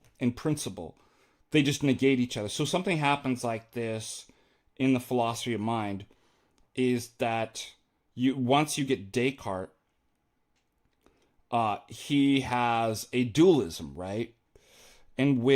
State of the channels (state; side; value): identical; both; correlation 1.00